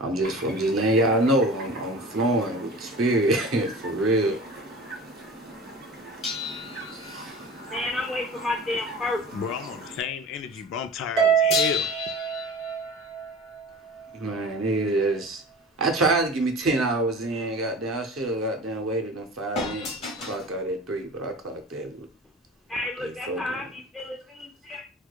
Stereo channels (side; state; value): both; normal; correlation 0.38